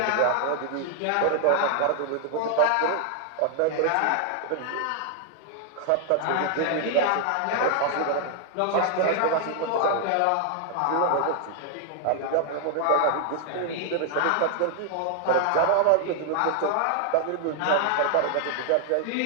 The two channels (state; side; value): different; both; correlation 0.00